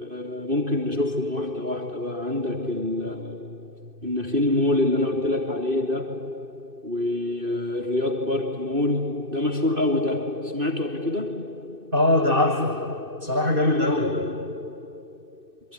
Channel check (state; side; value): late; left; 2.6 ms